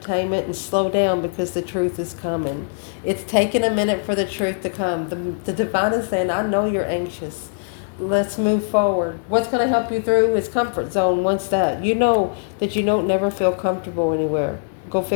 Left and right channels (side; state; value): right; silent; 64 dB below the other